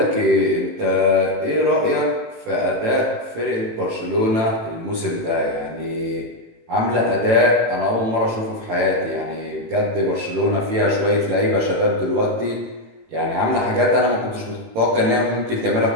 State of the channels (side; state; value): left; late; 18 ms